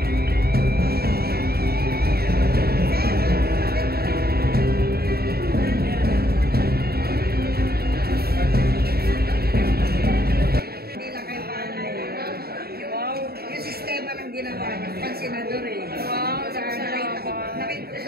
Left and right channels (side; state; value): left; late; 0.45 ms